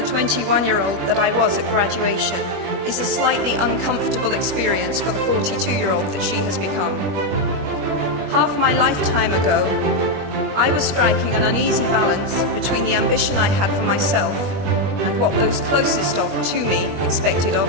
that I was at graduation is a slightly uncomfortable experience for the 42-year-old that she has become. Half my lifetime ago, I was striking an uneasy balance between the ambition I had for myself and what those closest to me expected of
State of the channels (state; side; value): late; left; 21 ms